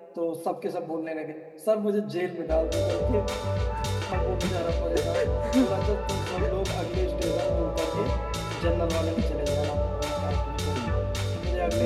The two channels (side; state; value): both; identical; correlation 1.00